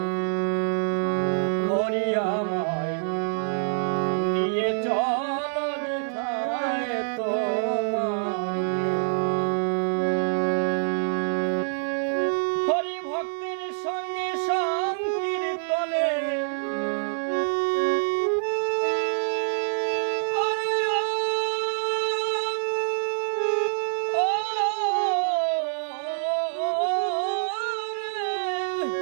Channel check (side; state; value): left; silent; 61 dB below the other